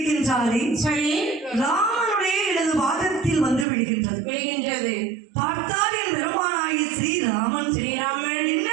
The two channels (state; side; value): drops out; left; at 3.7 s